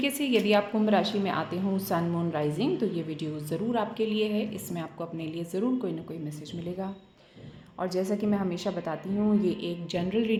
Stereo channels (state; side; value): identical; both; correlation 1.00